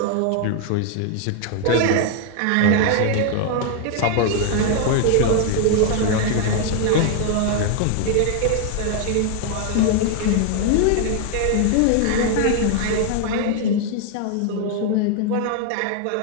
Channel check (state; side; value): different; both; correlation 0.00